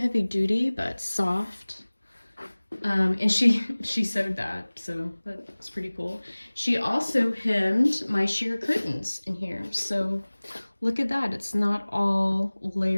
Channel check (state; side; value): inverted; both; correlation -1.00